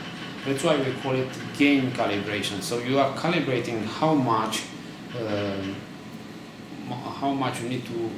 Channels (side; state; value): both; identical; correlation 1.00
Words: That's why we call it gain calibration. So you are calibrating how much you need to